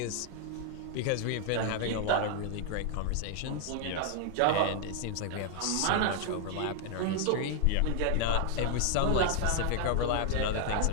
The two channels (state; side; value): different; both; correlation 0.00